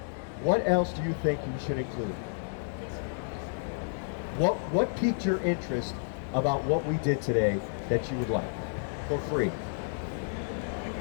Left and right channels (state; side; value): silent; right; digital silence